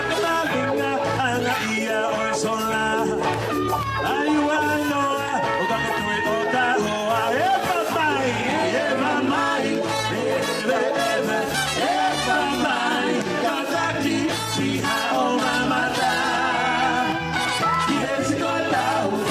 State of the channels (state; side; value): identical; both; correlation 1.00